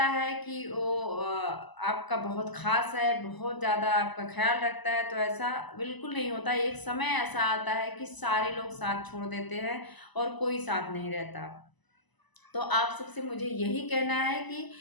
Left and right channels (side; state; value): right; late; 1.0 ms